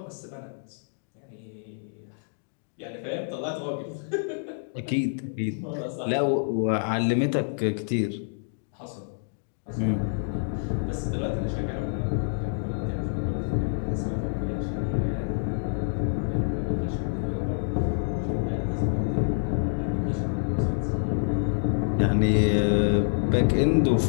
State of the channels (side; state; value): right; silent; digital silence